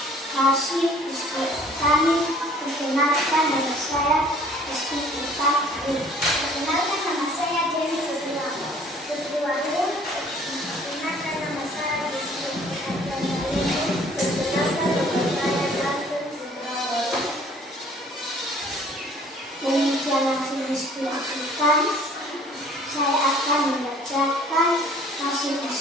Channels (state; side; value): normal; both; correlation 0.54